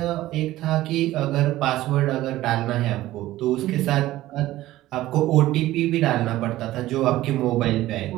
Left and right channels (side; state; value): left; quieter; 15.8 dB